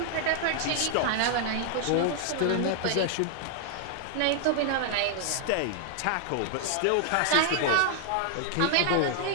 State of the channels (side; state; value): both; different; correlation -0.01